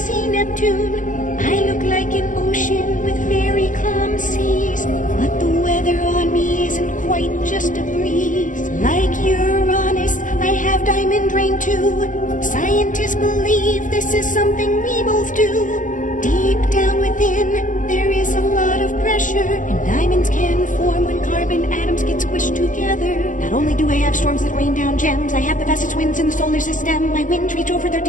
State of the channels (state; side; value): late; right; 0.37 ms